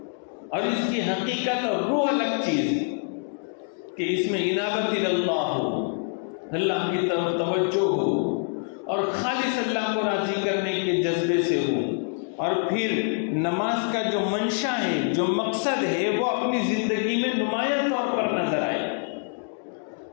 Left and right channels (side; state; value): right; silent; 61 dB below the other